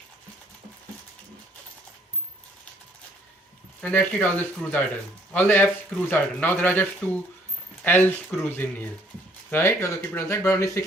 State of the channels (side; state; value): both; normal; correlation 0.63